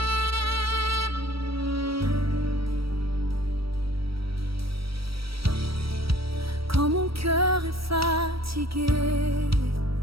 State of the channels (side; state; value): left; late; 0.75 ms